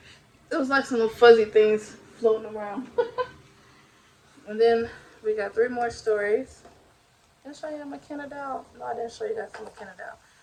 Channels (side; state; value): both; identical; correlation 1.00